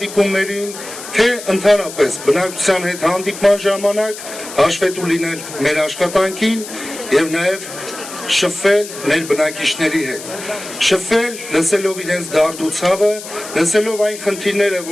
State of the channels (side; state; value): left; noise; hiss, 12 dB below the sound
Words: թե ընդհանրապես բնակչության հետ հանդիպման ժամանակ հաշվետու լինել մեր աշխատանքին եւ նաեւ շփվել մեր բնակիչների հետ, շփվել, լսելով իրենց դարդուցավը, լսելով այն խնդիրները,